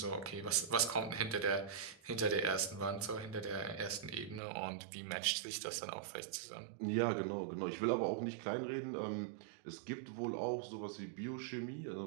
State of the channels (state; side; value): drops out; left; at 4.4 s